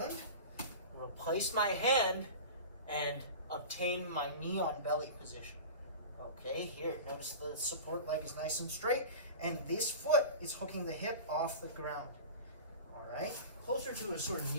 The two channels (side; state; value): both; inverted; correlation -0.33